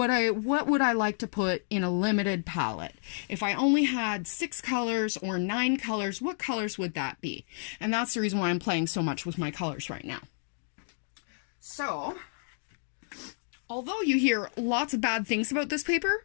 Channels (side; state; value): right; silent; digital silence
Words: would I like to put in a limited palette? If I only had 6 colors or 9 colors, what colors would that be? And that's the reason why I'm playing so much with my colors right now. So, although you hear lots of bad things about this